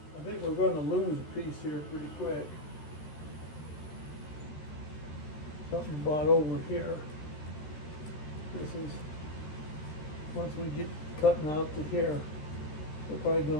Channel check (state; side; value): late; right; 13 ms